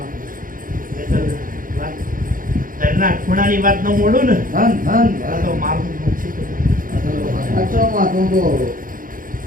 વાત ઘરના ખૂણાની વાત ન મોડું ને ધન ધન આ તો મારું નુકસી તો સાચો માં તું તો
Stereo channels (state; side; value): late; left; 0.40 ms